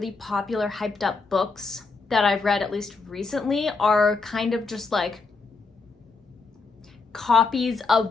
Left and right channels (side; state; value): right; quieter; 4.2 dB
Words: popular, hyped up books that I've read, at least recently, are kind of just like copies